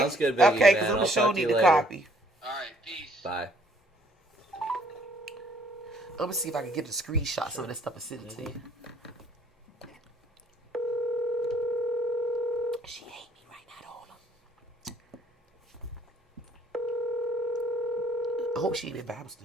good, Biggie, Okay, man. because I'm I'll gonna show talk to need you the later. copy. All right, peace. Bye. I'm gonna see if I can get the screenshot some of that stuff and send it to you. She hate me right now, hold on. I hope she ain't in Bible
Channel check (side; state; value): both; normal; correlation 0.61